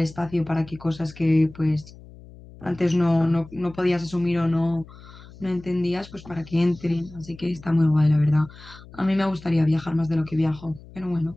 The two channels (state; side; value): noise; left; hum, 20 dB below the sound